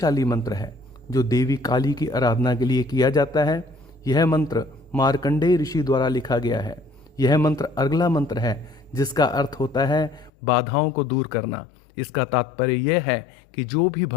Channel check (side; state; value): right; drops out; at 10.3 s